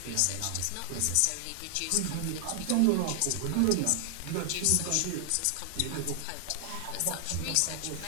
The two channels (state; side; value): different; both; correlation 0.00